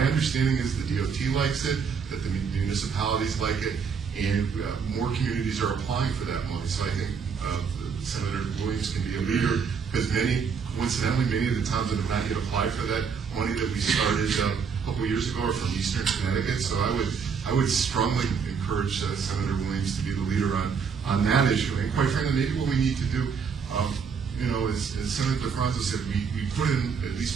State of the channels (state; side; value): quieter; left; 6.1 dB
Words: understanding is the DOT likes it, that the municipalities like it, and more communities are applying for that money. So I think Senator Williams can be a leader, because coincidentally, many of the towns that have not yet applied for that money that we started a couple of years ago are from Eastern Connecticut. So I would strongly encourage Senator Williams to be the leader on that issue. And quite frankly, maybe what we need to do, you know, as Senator DeFranco said, we put in at